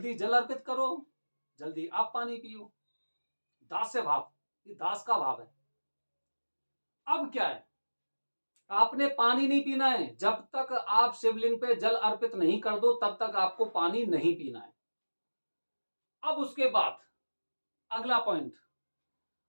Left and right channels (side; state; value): both; inverted; correlation -1.00